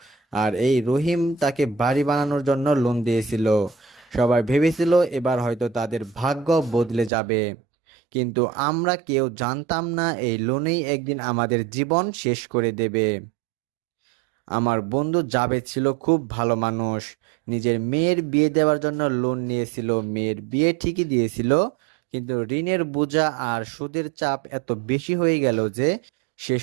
আর এই রহিম তাকে বাড়ি বানানোর জন্য লোন দিয়েছিল। সবাই ভেবেছিল এবার হয়তো তাদের ভাগ্য বদলে যাবে, কিন্তু আমরা কেউ জানতাম না এই লোনেই একদিন আমাদের জীবন শেষ করে দেবে। আমার বন্ধু জাবেদ ছিল খুব ভালো মানুষ, নিজের মেয়ের বিয়ে দেওয়ার জন্য লোন নিয়েছিল, মেয়ের বিয়ে ঠিকই দিয়েছিল, কিন্তু ঋণের বোঝা আর সুদের চাপ এত বেশি হয়ে গেল যে শেষ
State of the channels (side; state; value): left; drops out; at 7.1 s